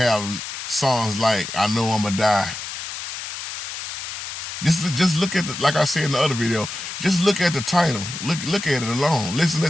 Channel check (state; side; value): noise; left; hiss, 8 dB below the sound